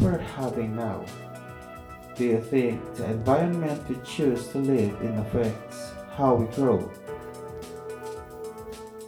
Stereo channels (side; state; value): both; identical; correlation 1.00